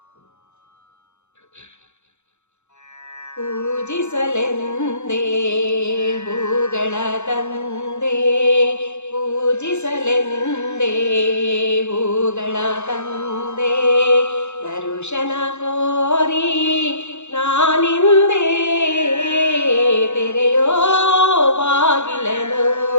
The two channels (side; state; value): right; late; 0.83 ms